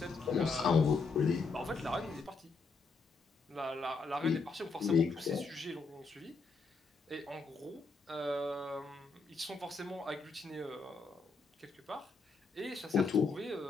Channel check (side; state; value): right; quieter; 4.2 dB